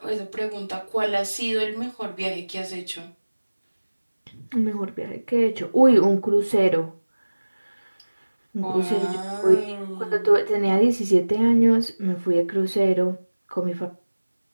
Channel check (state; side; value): inverted; both; correlation -1.00